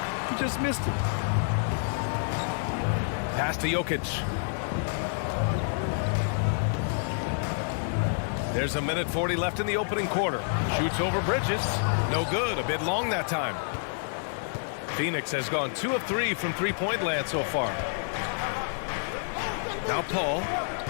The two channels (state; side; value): silent; right; digital silence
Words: He just missed it. Pass to Jokic. There's a minute 40 left in the opening quarter. Shoots over Bridges. No good. A bit long that time. Phoenix has gone 2 of 3 from three-point land so far. Now Paul.